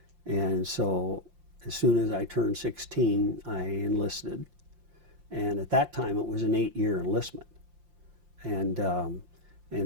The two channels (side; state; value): left; late; 5.7 ms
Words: And so as soon as I turned 16, I enlisted. And at that time, it was an 8-year enlistment. And